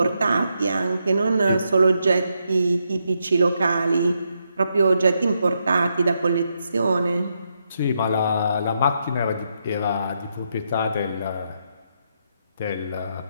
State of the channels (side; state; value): both; inverted; correlation -0.81